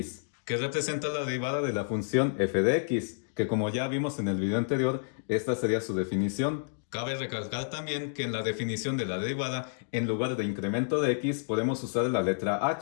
que representa la derivada de la función f de x, que como ya vimos en el video anterior, esta sería su definición. Cabe recalcar también que en la definición de la derivada, en lugar de incremento de x, podemos usar la letra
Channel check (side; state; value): right; silent; digital silence